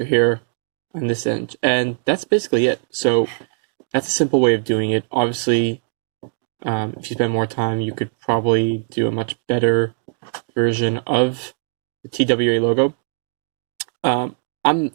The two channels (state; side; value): silent; left; 65 dB below the other